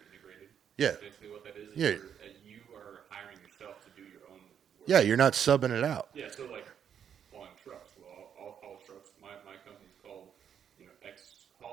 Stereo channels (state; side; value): quieter; left; 8.4 dB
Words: integrated? Yeah. That's basically what that is where you are hiring yourself to do your own work. Yeah, you're not subbing it out. Yeah, so like hauling trucks. Well, I'll haul trucks. My company's called, X